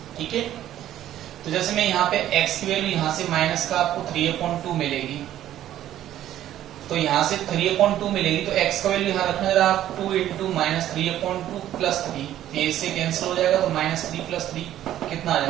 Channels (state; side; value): quieter; left; 12.3 dB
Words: ठीक है, तो जैसे मैं यहाँ पे x की वैल्यू यहाँ से माइनस का आपको 3/2 मिलेगी, तो यहाँ से 3/2 मिलेगी, तो x का वैल्यू यहाँ रखना जरा आप 2 इंटू -3/2 प्लस 3, ये इससे कैंसिल हो जाएगा, तो -3 प्लस 3 कितना आ